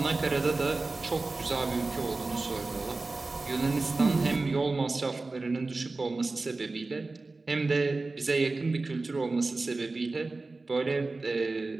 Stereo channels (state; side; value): quieter; left; 3.5 dB